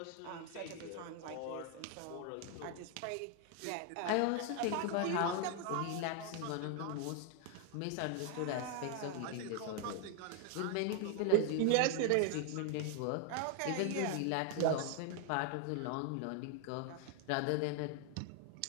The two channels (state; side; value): different; both; correlation 0.00